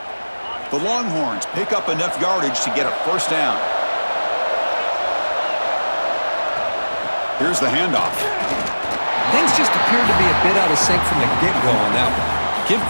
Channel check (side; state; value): both; inverted; correlation -1.00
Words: The Longhorns pick up enough yardage to get a first down. Here's the handoff. Things just appeared to be a bit out of sync from the get-go on that one. Give